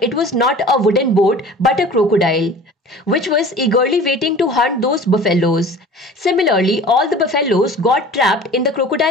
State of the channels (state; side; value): normal; both; correlation 0.42